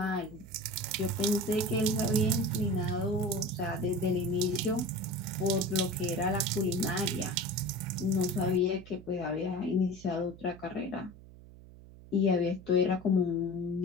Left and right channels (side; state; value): right; noise; hum, 19 dB below the sound